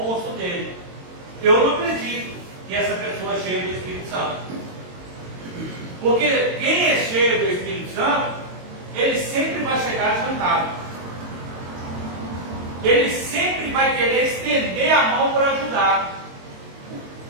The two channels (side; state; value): left; late; 22 ms